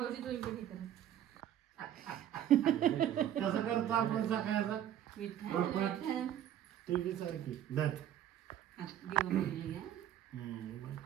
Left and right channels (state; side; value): quieter; left; 11.0 dB